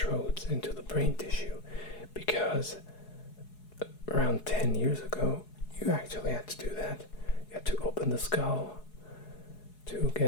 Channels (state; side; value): late; right; 4.7 ms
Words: into the brain tissue, because around 10 years ago, you actually had to do that. You had to open the skull to